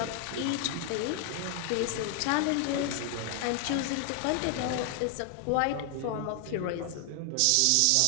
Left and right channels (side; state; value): both; different; correlation 0.00